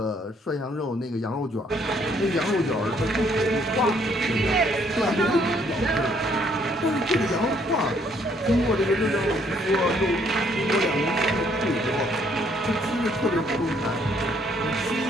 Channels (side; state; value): both; normal; correlation 0.67